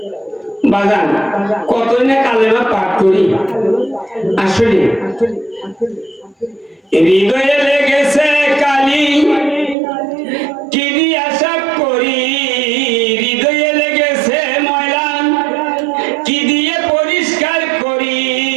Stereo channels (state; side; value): drops out; left; at 9.8 s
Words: বাজান কতই না কালেমা পাঠ করি, আসলে হৃদয়ে লেগেছে কালি কি দিয়া সাফ করি, হৃদয়ে লেগেছে ময়লা কি দিয়ে পরিষ্কার করি,